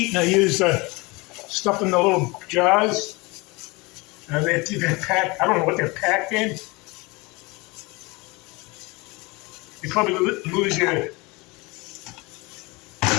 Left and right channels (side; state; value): right; quieter; 25.2 dB